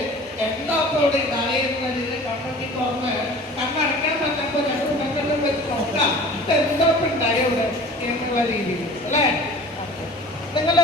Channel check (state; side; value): normal; both; correlation 0.43